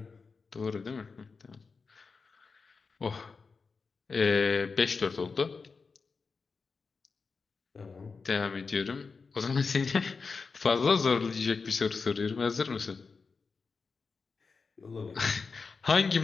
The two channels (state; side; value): quieter; right; 4.8 dB